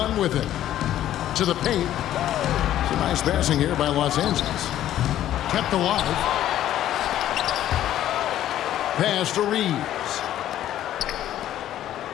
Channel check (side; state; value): right; quieter; 12.3 dB